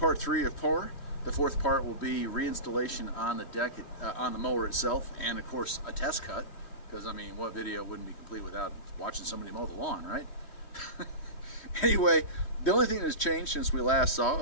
3 of pour. The 4th part will be reinstallation on the deck, on the mower itself, and of course a test cut, because I mean, what video wouldn't be complete without watching somebody mow the lawn, right? Anyway, the only thing that has changed since we last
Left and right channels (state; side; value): late; right; 3.1 ms